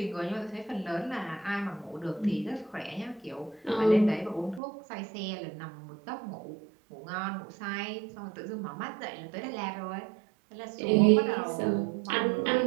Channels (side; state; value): left; drops out; at 4.6 s